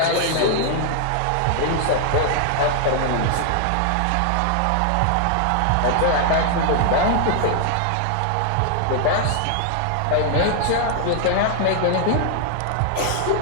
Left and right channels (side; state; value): both; different; correlation 0.00